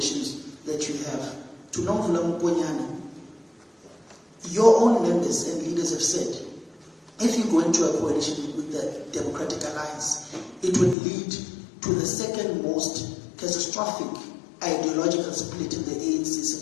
that you have? To Nomvula Mponyana, your own members and leaders have said, if you go into a coalition with the Democratic Alliance, it would lead to the second most catastrophic ideological split in the ANC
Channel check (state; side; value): drops out; right; at 11.0 s